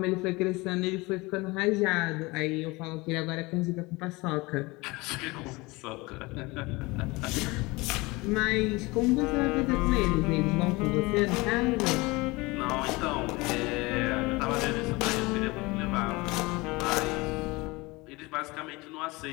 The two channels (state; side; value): quieter; right; 23.5 dB